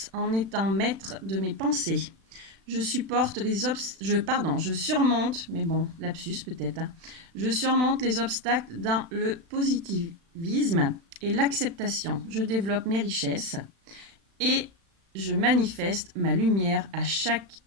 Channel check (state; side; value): late; left; 36 ms